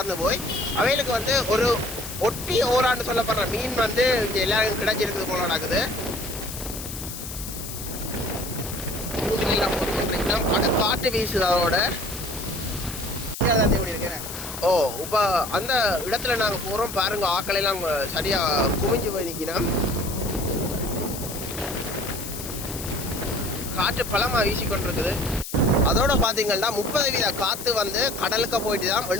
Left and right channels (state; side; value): noise; left; hiss, 9 dB below the sound